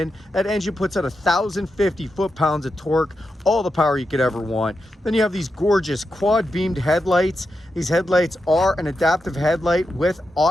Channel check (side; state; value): both; normal; correlation 0.87